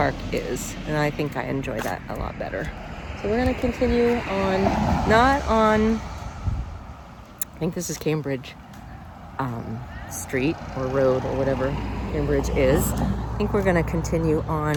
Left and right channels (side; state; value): both; identical; correlation 1.00